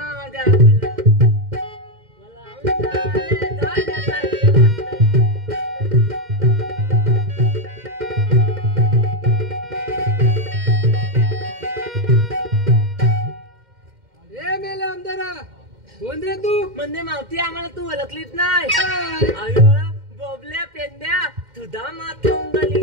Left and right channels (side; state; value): left; late; 2.1 ms